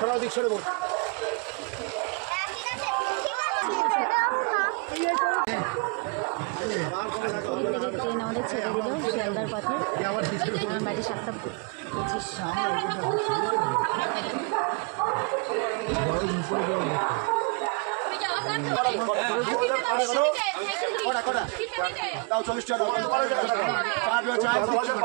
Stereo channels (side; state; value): left; quieter; 33.7 dB